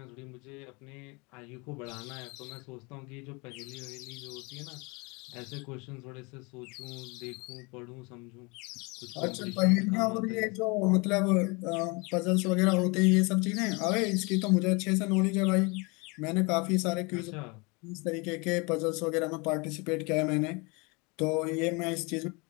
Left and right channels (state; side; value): quieter; right; 28.5 dB